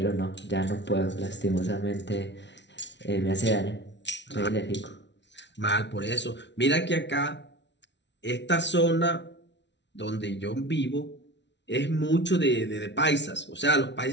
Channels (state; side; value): late; right; 0.51 ms